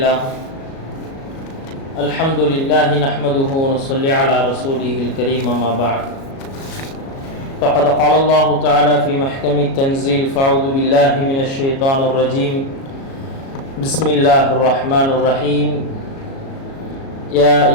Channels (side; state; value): right; late; 37 ms